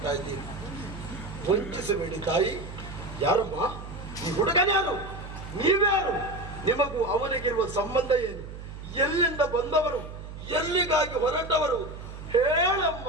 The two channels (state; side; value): noise; right; hum, 11 dB below the sound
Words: ಇದ್ದೀನಿ. ವಂಚಿಸಬೇಡಿ ತಾಯಿ. ಯಾರಮ್ಮ ಈ ಹುಡುಗನ್ಯಾರು? ನೀವ್ಯಾರು? ನಿಮಗೂ ಅವನಿಗಿರುವ ಸಂಬಂಧ ಏನು? ಎಲ್ಲಿಂದ ಬಂದವರು? ಎಲ್ಲಿಗಾಗಿ ಹೊರಟವರು? ಹೇಳಮ್ಮ,